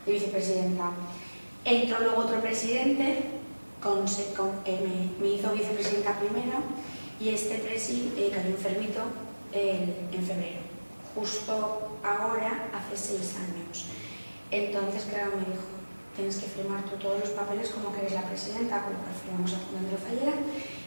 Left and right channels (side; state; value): both; inverted; correlation -1.00